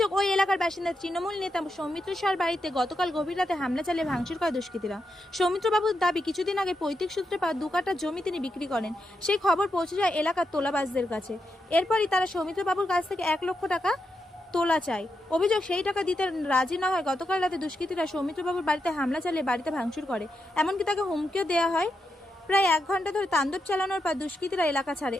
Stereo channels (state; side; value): normal; both; correlation 0.85